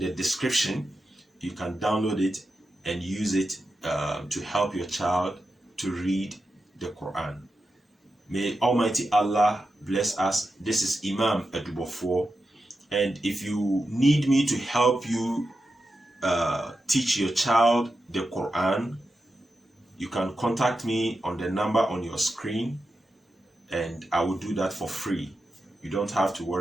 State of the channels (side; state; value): both; normal; correlation 0.89